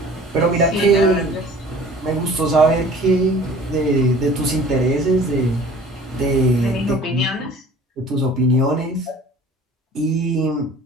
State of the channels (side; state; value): both; normal; correlation 0.47